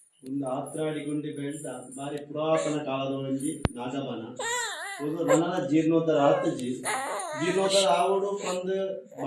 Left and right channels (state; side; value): identical; both; correlation 1.00